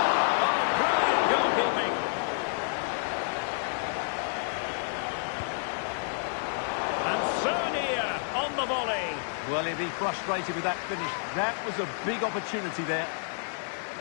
Oh, brilliant goalkeeping. And Sonia on the volley. Well, he'll be frustrated with that finish. That was a big opportunity there.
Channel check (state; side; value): silent; right; 58 dB below the other